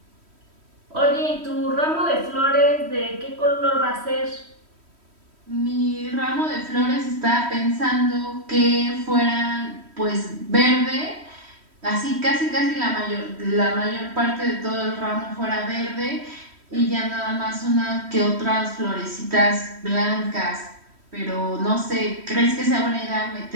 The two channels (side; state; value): left; late; 3.1 ms